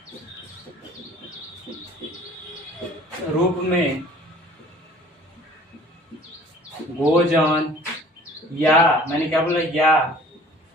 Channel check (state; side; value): normal; both; correlation 0.50